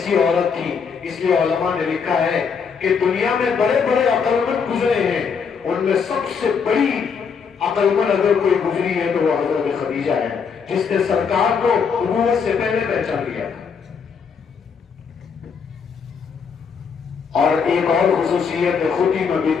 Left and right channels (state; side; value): quieter; right; 6.1 dB